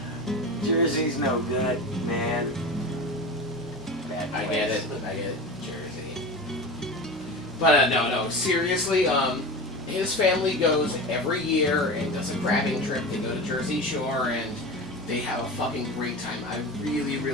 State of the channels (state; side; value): normal; both; correlation 0.29